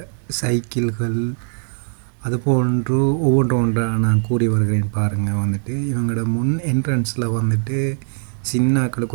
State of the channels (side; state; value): left; silent; 66 dB below the other